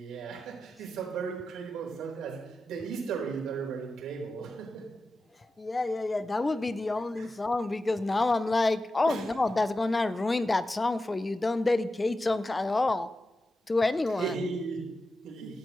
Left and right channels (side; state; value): both; normal; correlation 0.91